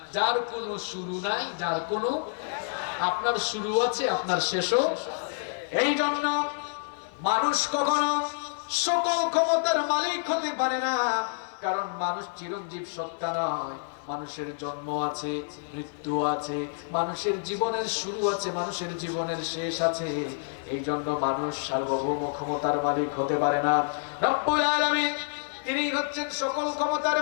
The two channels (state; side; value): silent; right; 59 dB below the other